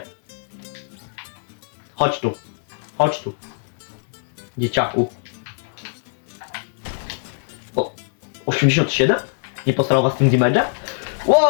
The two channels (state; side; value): silent; right; digital silence